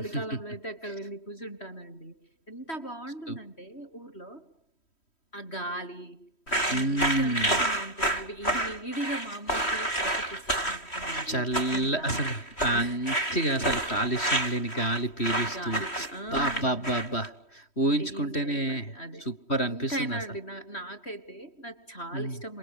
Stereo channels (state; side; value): late; right; 3.1 ms